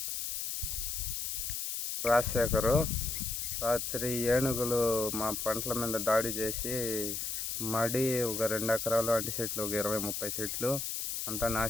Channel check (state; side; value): noise; left; hiss, 3 dB below the sound